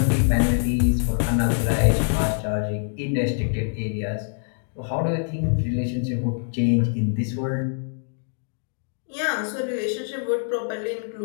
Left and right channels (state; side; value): silent; right; digital silence